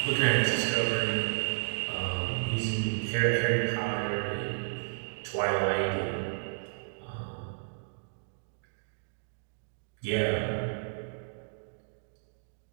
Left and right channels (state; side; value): silent; left; digital silence